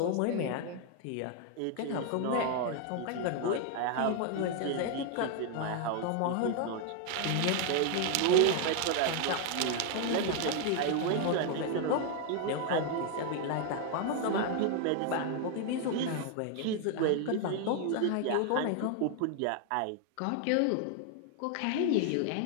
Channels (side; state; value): both; different; correlation 0.00